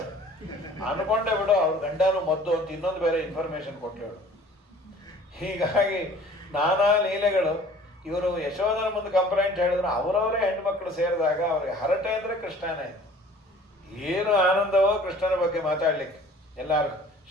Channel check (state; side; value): normal; both; correlation 0.50